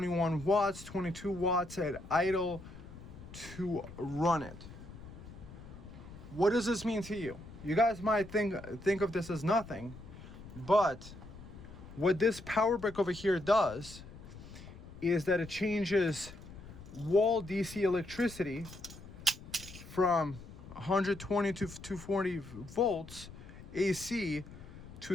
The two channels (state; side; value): noise; left; rumble, 15 dB below the sound